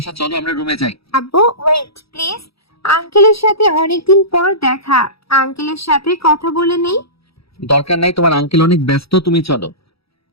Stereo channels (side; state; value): right; late; 0.77 ms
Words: চলো আমরা রুমে যাই। আব্বু ওয়েট প্লিজ, আঙ্কেলের সাথে অনেকদিন পর দেখা, আঙ্কেলের সাথে কথা বলে নেই। দরকার নাই, তোমার আঙ্কেল অনেক ব্যস্ত, তুমি চলো।